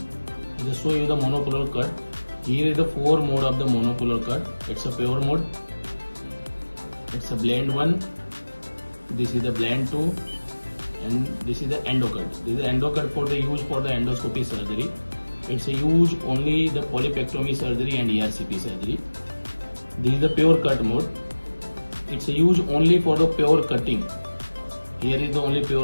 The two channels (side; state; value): both; inverted; correlation -1.00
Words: I just show you the monopolar cut. Here is the 4 mode of the monopolar cut. It's a pure mode. It's a blend 1. This is the blend 2. And this is the endo cut. This is the endo cut for the use for the endoscopy surgery. It's a use only the polypectomy surgery and ERCP surgery. This is the pure cut mode. It's a use only for the pure cutting. Here is the only